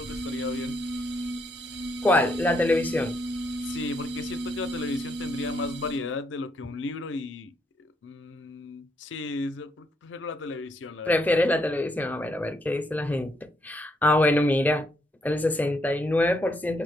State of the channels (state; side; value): normal; both; correlation 0.75